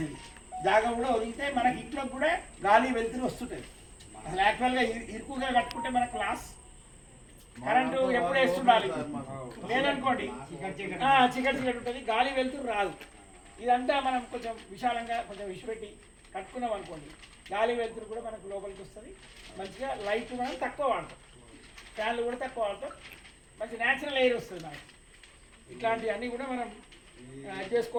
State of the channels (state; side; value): identical; both; correlation 1.00